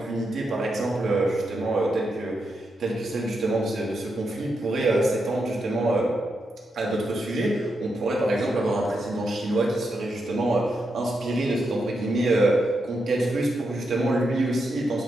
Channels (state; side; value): normal; both; correlation 0.84